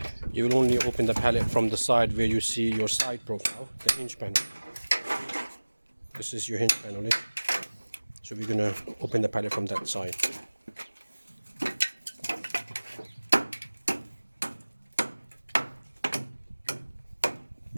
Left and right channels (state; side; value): inverted; both; correlation -1.00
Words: You will only open the pallet from the side where you see your side profile, the hinge panel. This is your hinge panel. So we're going to open the pallet from that side.